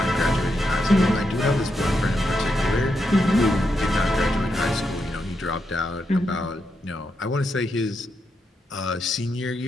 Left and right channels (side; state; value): both; normal; correlation 0.83